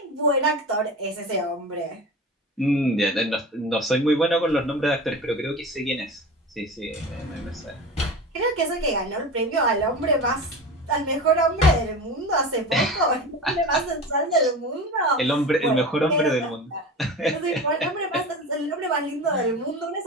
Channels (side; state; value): both; normal; correlation 0.31